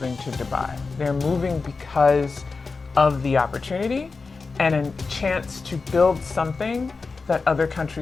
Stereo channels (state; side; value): quieter; right; 4.3 dB